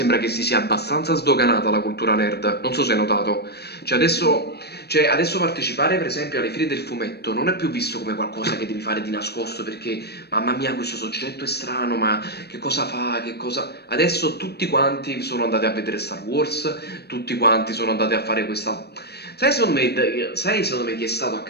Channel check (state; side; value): late; right; 0.47 ms